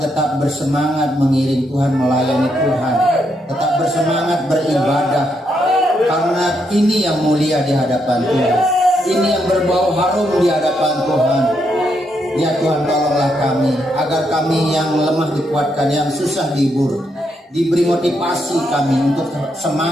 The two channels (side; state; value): both; normal; correlation 0.78